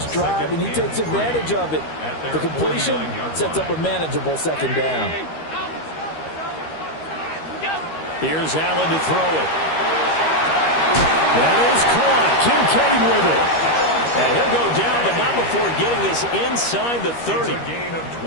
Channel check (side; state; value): right; late; 13 ms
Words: drive, and he takes advantage of it. The completion sets up a manageable second down. Here's Allen to throw it. That is caught. Kincaid with it. And he'll go down, but not before getting this inside the 30.